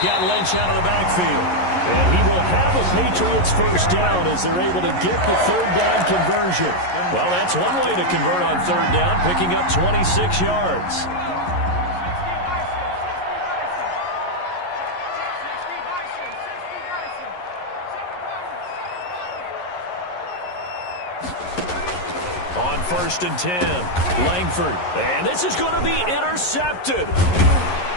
Lynch out of the backfield. And he will have a Patriots first down as they're able to get the 3rd down conversion. Well, that's one way to convert on 3rd down, picking up 26 yards. On 1st and 10, Langford. And this is going to be intercepted.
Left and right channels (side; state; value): right; late; 11 ms